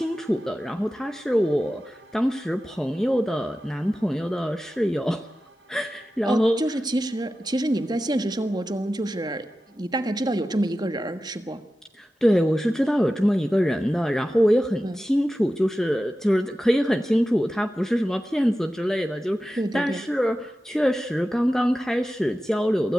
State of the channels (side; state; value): both; normal; correlation 0.94